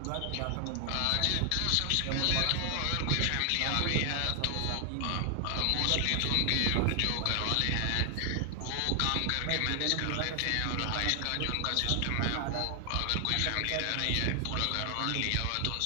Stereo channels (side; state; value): both; different; correlation 0.00